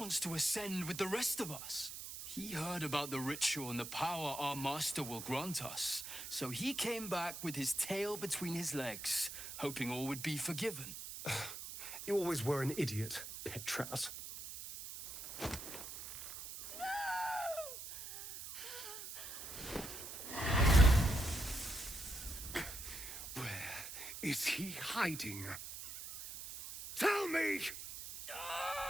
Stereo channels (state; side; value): noise; right; hiss, 9 dB below the sound